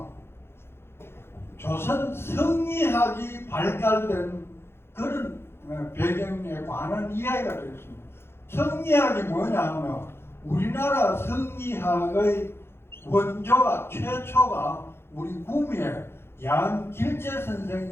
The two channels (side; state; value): right; late; 0.12 ms